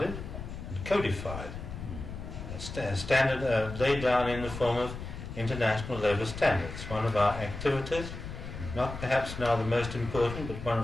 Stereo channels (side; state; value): left; noise; rumble, 9 dB below the sound